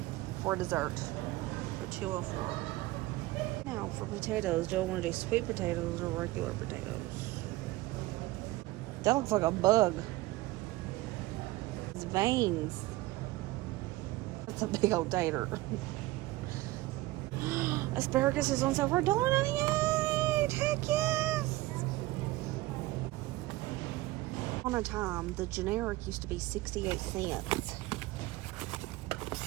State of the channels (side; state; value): left; quieter; 18.6 dB